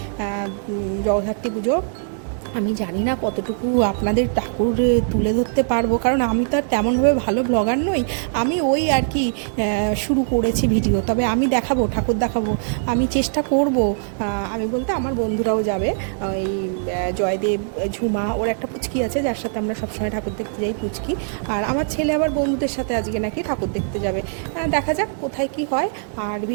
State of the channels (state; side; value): silent; left; digital silence